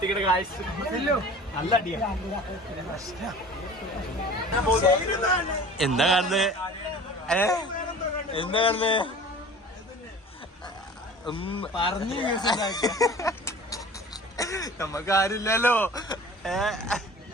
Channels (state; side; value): normal; both; correlation 0.42